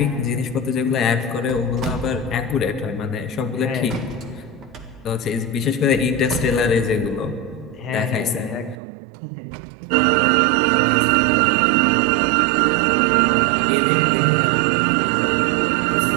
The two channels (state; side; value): drops out; left; at 8.8 s